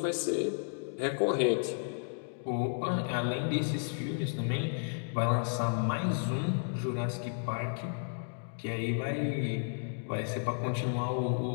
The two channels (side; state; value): right; silent; digital silence